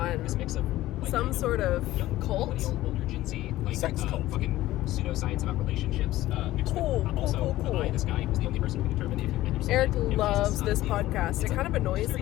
some sort of cult. Sex cult. Fucking pseudoscience about relationships. Cool. This guy who's the only person who can determine if you've been Eric loves this podcast. It kind of annoys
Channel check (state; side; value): quieter; right; 15.8 dB